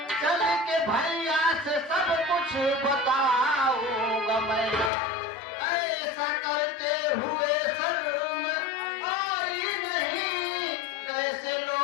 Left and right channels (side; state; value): right; drops out; at 4.9 s